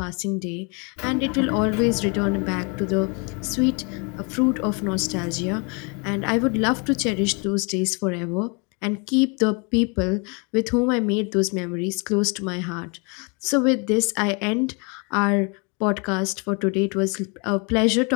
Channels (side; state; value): right; quieter; 33.1 dB